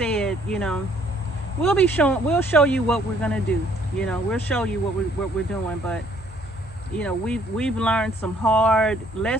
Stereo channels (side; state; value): both; normal; correlation 0.63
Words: you know, we'll show you what we're gonna do. You know, we'll show you what we're doing. But you know, we've learned some hard